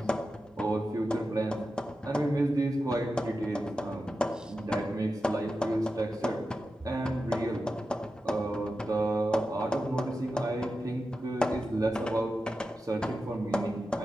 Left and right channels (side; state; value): both; normal; correlation 0.91